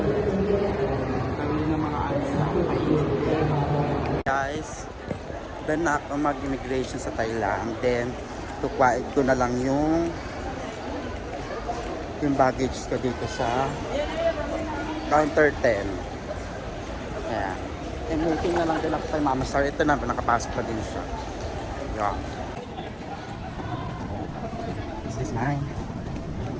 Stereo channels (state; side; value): identical; both; correlation 1.00